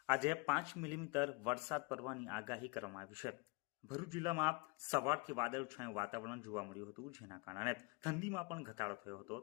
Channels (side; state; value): right; quieter; 26.2 dB